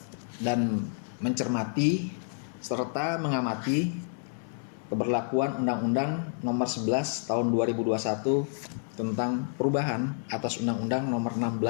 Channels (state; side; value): silent; right; 58 dB below the other